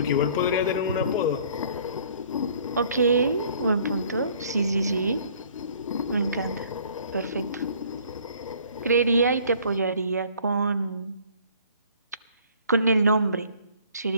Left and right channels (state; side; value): inverted; both; correlation -0.56